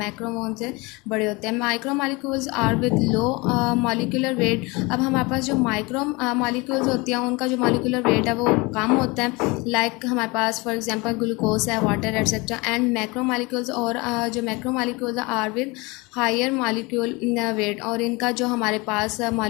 वो उनसे बड़े होते हैं। Micromolecules are with low molecular weight, अब हमारे पास जो माइक्रो मॉलिक्यूल्स होती हैं उनका जो मॉलिक्यूलर वेट है वो कम होता है, लाइक हमारे पास फॉर एग्जांपल ग्लूकोज है, वाटर एटसेट्रा। एंड मैक्रोमॉलिक्यूल्स और जो macromolecules are with higher molecule weight, और इनका जो हमारे पास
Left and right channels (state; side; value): quieter; right; 25.4 dB